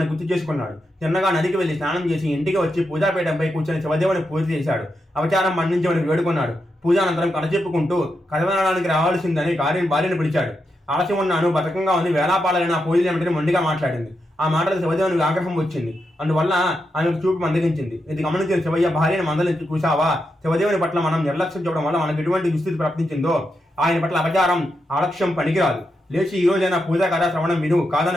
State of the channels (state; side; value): normal; both; correlation 0.85